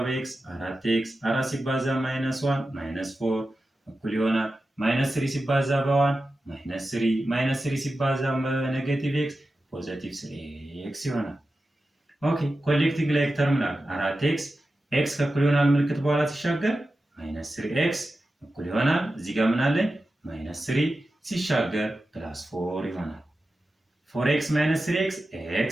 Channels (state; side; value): normal; both; correlation 0.93